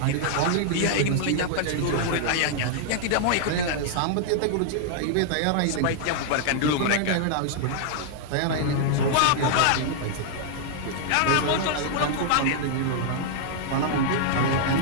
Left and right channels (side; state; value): both; different; correlation -0.01